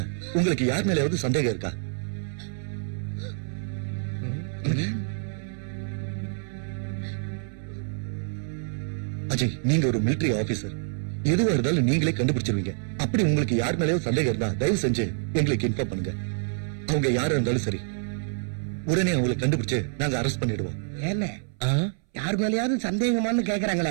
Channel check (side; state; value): left; silent; 60 dB below the other